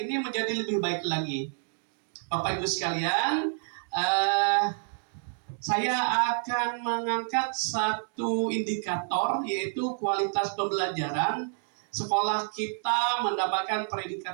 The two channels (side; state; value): left; silent; 59 dB below the other